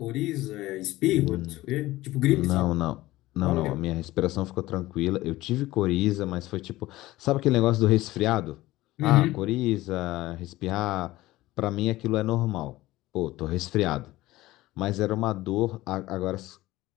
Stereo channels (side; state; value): right; quieter; 17.5 dB